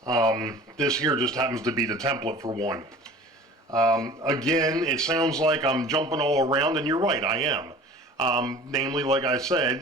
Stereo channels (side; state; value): both; normal; correlation 0.43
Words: This here just happens to be the template for one. Again, it sounds like I'm jumping all around, and you're right, I am. Namely, like I